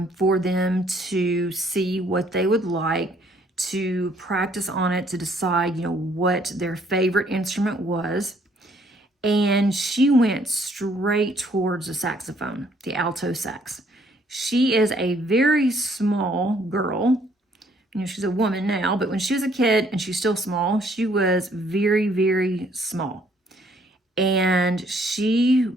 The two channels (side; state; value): both; normal; correlation 0.64